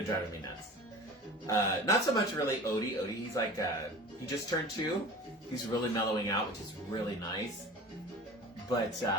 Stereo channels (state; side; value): normal; both; correlation 0.38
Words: Not so much really Odie. Odie, he's like, he just turned 2. He's really mellowing out, which is really nice. But,